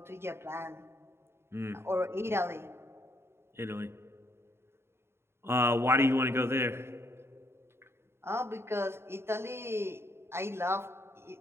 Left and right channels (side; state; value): left; late; 0.12 ms